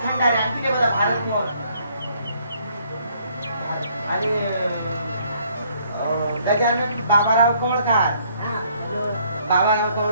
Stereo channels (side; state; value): both; inverted; correlation -0.65